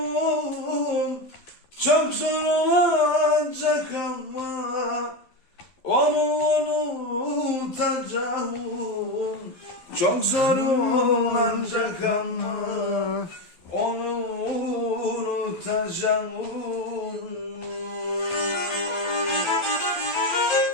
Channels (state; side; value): late; right; 12 ms